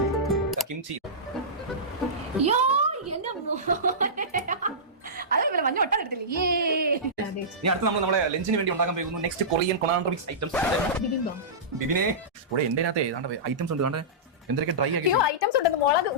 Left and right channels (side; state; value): both; normal; correlation -0.18